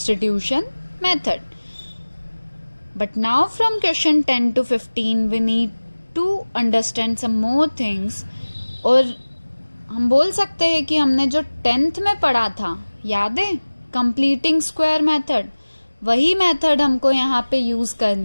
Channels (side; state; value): both; inverted; correlation -1.00